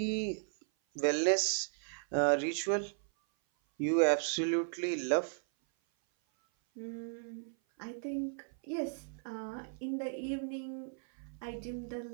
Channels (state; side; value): silent; left; 54 dB below the other